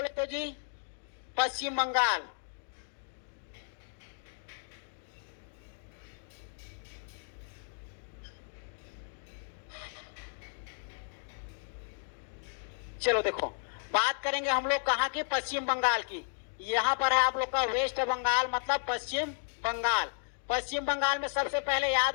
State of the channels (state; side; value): silent; right; 55 dB below the other